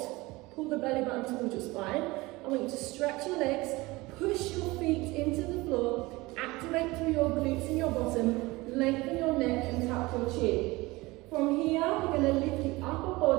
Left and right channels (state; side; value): quieter; left; 21.6 dB